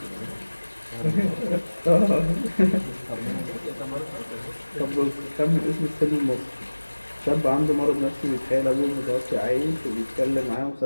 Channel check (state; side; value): inverted; both; correlation -1.00